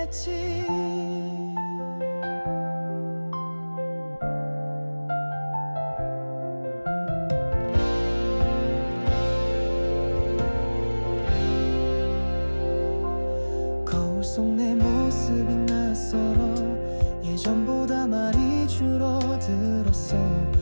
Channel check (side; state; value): both; inverted; correlation -1.00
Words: 낯설어 예전보다 말이 줄어들었어.